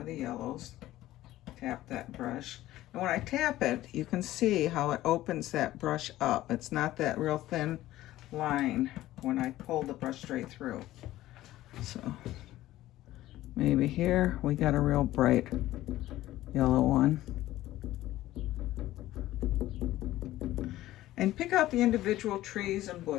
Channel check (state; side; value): quieter; right; 15.3 dB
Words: of the yellows, tap that brush. And when I tap it, you can see how it opens that brush up. It's not that real thin line when I pull the brush straight through. So maybe here we got a real bright yellow one. And pick out the individual trees and